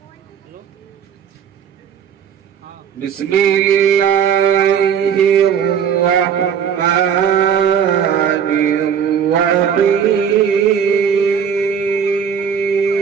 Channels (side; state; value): left; quieter; 7.8 dB